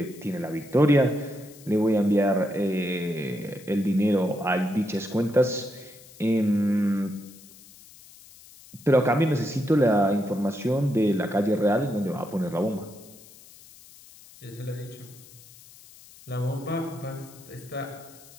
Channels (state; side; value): noise; left; hiss, 22 dB below the sound